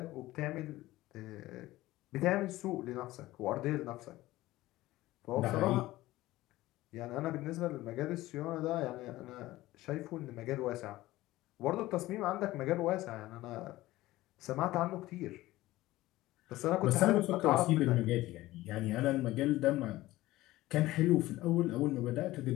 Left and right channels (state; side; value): quieter; right; 17.2 dB